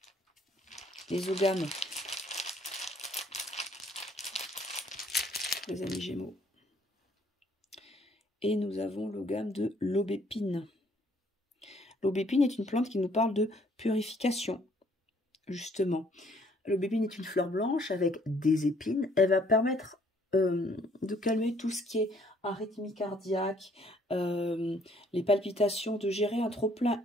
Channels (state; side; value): normal; both; correlation 0.63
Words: les ogames, les amis Gémeaux. Et nous avons l'ogame de l'aubépine. L'aubépine est une plante qui nous parle de purification, justement. L'aubépine est une fleur blanche avec des épines. Elle va permettre de calmer tout ce qui est arythmie cardiaque, les palpitations, de gérer un trop-plein